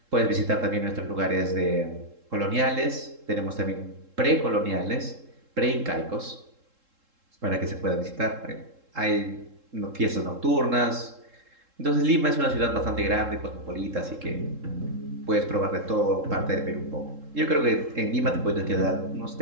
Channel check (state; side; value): late; left; 3.7 ms